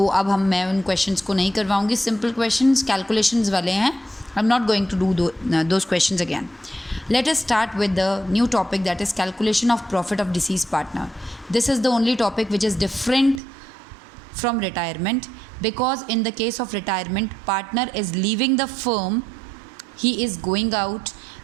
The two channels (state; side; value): drops out; left; at 13.4 s